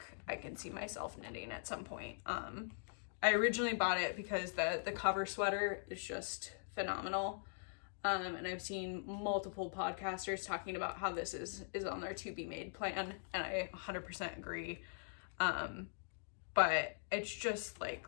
I can see myself knitting at some point. I originally bought it because the cover sweater is just phenomenal. And I've seen multiple podcasters talking about how this is on their to be made plan, and I 100% agree. But it's just like,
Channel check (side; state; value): right; silent; digital silence